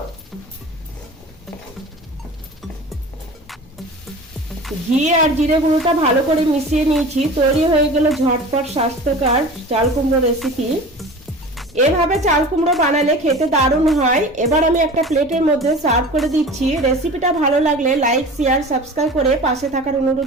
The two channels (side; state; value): both; normal; correlation 0.37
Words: ঘি আর জিরে গুঁড়োটা ভালো করে মিশিয়ে নিয়েছি। তৈরি হয়ে গেল ঝটপট স্বাস্থ্যকর চাল কুমড়ো রেসিপি। এভাবে চাল কুমড়ো বানালে খেতে দারুণ হয়। এবার আমি একটা প্লেটের মধ্যে সার্ভ করে দিচ্ছি। রেসিপিটা ভালো লাগলে লাইক, শেয়ার, সাবস্ক্রাইব করে পাশে থাকার